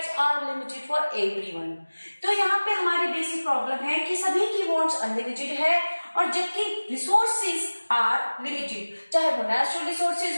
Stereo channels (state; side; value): inverted; both; correlation -1.00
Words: are limited for everyone. तो यहाँ पे हमारी बेसिक प्रॉब्लम है कि सभी की wants अनलिमिटेड है और जबकि रिसोर्सेज आर लिमिटेड, चाहे वो नेचुरल रिसोर्सेज